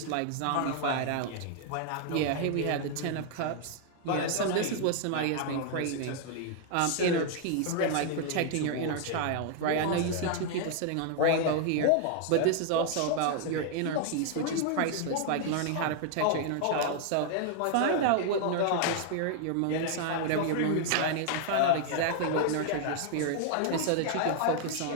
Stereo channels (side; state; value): both; different; correlation -0.01